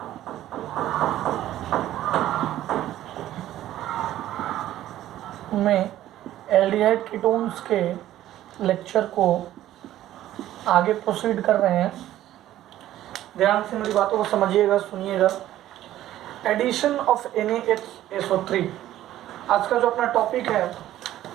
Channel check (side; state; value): left; quieter; 13.4 dB